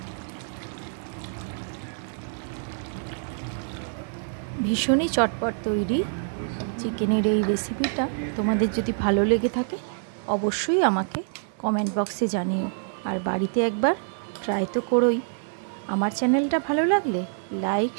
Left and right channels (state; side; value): silent; left; digital silence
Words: ভীষণই চটপট তৈরি চিকেনের এই রেসিপিটা তোমাদের যদি ভালো লেগে থাকে অবশ্যই আমাকে কমেন্ট বক্সে জানিও। আর বাড়িতে একবার ট্রাই তো করোই। আমার চ্যানেলটা ভালো লাগলে লাইক,